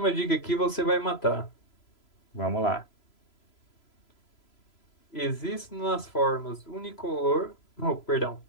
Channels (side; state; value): right; late; 3.0 ms